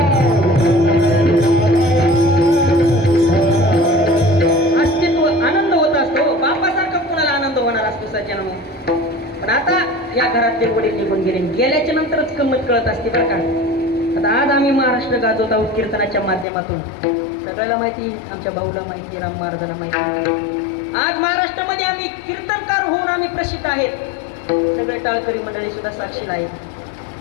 अस्तित्व आनंद होत असतो. बापासारखा कोणाला आनंद होणार असतो सज्जनांनो. पण आता या घरातले वडील निघून गेले. गेल्याच्या नंतरच गंमत कळत असते बरं का. आता आज आम्ही महाराष्ट्र गाजवत आहोत कीर्तनाच्या माध्यमातून. सगळ्याला माहिती, आमच्या भाऊला माहिती, राम महाराजाला माहिती. आज महाराष्ट्रामध्ये आम्ही कीर्तनकार होऊन आम्ही प्रसिद्ध आहेत. सगळे टाळकरी मंडळी सुद्धा साक्षीला आहेत.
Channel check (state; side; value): drops out; right; at 16.4 s